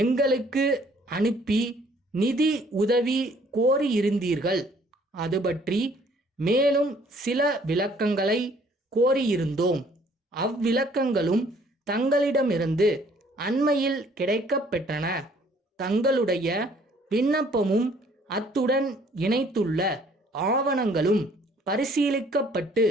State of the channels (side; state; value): both; normal; correlation 0.60